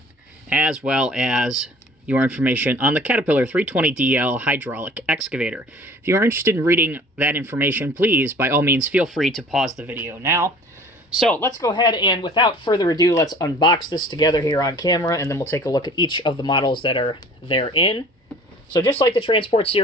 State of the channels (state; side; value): normal; both; correlation 0.48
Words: as well as your information on the Caterpillar 320DL hydraulic excavator. If you are interested in reading that information, please, by all means, feel free to pause the video now. So let's go ahead and, without further ado, let's unbox this together here on camera, and then we'll take a look at each of the models that are therein. So just like the Transport